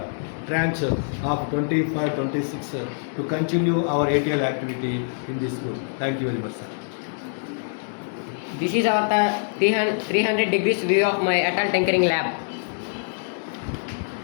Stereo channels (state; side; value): silent; right; digital silence